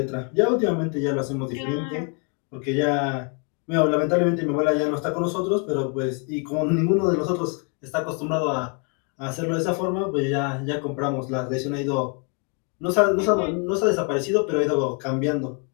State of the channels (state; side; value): quieter; right; 35.9 dB